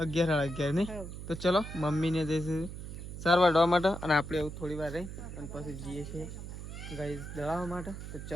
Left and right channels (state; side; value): noise; right; hum, 9 dB below the sound